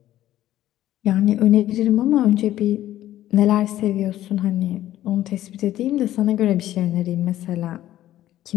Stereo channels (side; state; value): right; quieter; 13.5 dB